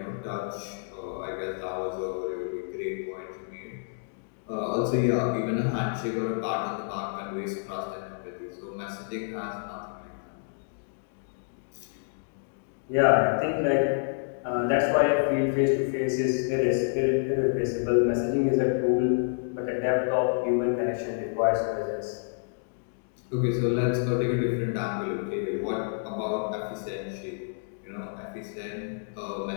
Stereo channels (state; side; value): silent; right; digital silence